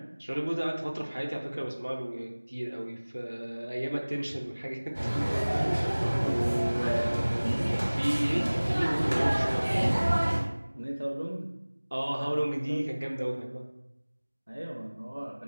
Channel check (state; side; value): inverted; both; correlation -1.00